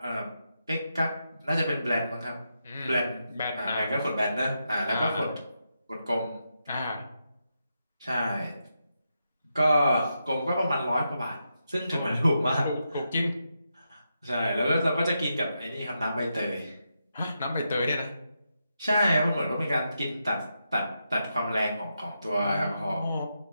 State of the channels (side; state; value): both; inverted; correlation -0.85